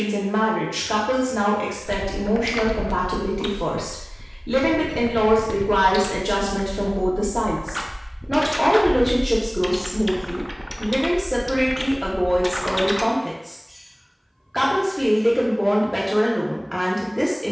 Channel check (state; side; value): identical; both; correlation 1.00